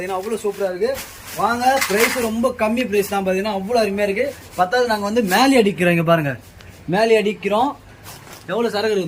அவ்வளோ சூப்பராக இருக்குது. வாங்க, ப்ரைஸ் ரொம்ப கம்மி ப்ரைஸ் தான். பார்த்தீங்கன்னா அவ்வளோ அருமையாக இருக்குது. பத்தாவது நாங்கள் வந்து மேலே அடிக்கிறோம். இங்கே பாருங்கள் மேலே அடிக்கிறோம். எவ்வளோ சரக்கு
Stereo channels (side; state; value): both; identical; correlation 1.00